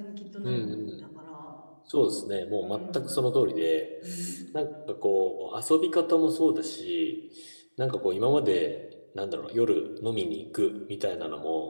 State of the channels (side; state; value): both; inverted; correlation -1.00